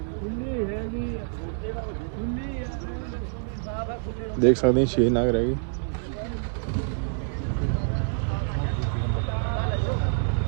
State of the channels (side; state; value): left; silent; digital silence